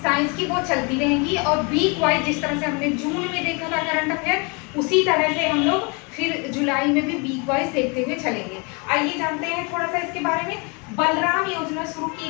साइंस की वो चलती रहेंगी और वीक वाइज जिस तरह से हमने जून में देखा था करंट अफेयर उसी तरह से हम लोग फिर जुलाई में भी वीक वाइज देखते हुए चलेंगे। आइए जानते हैं थोड़ा सा इसके बारे में। बलराम योजना शुरू की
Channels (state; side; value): quieter; right; 30.8 dB